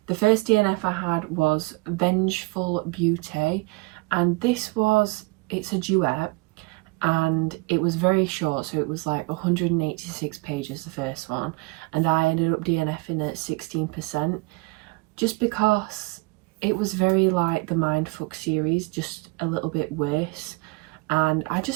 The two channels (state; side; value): quieter; left; 25.7 dB